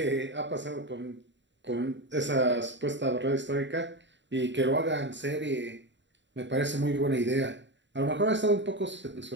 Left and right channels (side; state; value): left; late; 0.53 ms